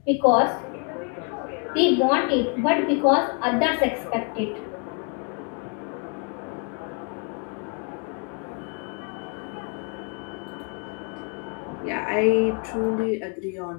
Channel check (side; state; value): right; quieter; 36.8 dB